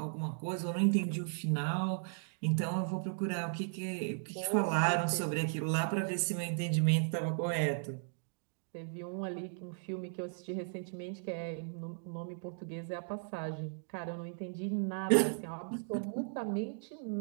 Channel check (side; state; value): left; silent; digital silence